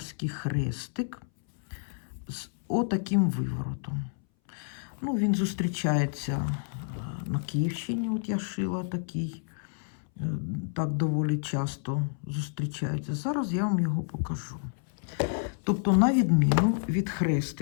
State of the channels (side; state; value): right; silent; 58 dB below the other